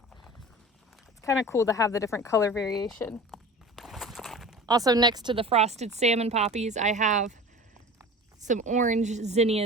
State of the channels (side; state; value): both; normal; correlation 0.38